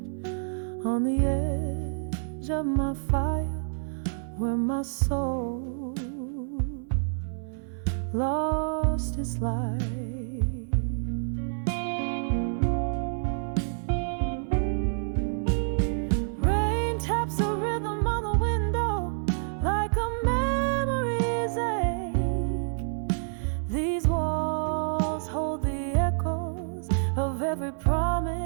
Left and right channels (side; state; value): left; silent; digital silence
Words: On the edge of my fire, where my soul lost its light. Rain taps a rhythm on the window like a memory's ache. These walls hold the echoes of every